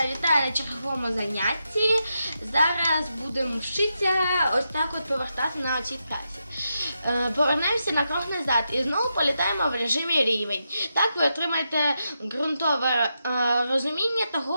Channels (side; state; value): both; inverted; correlation -0.85